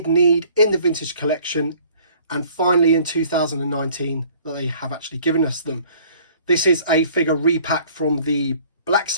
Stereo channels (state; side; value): inverted; both; correlation -0.54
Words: need in the Vintage Collection. And finally in 2019 that they have actually given us them. This is a figure repack from the Black